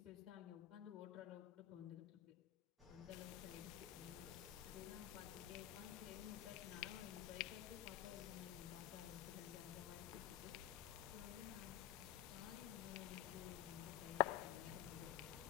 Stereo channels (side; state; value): right; quieter; 13.5 dB